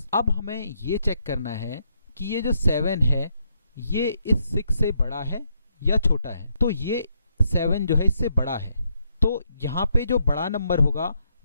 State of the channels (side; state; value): both; inverted; correlation -0.77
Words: अब हमें ये चेक करना है कि ये जो 7 है ये इस 6 से बड़ा है या छोटा है। तो ये 7 जो है इससे बड़ा है, तो यहाँ पे जो बड़ा नंबर होगा